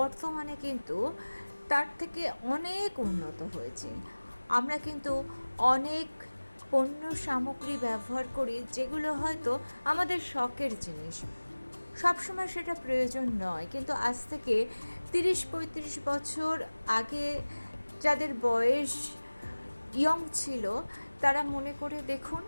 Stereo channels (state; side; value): inverted; both; correlation -1.00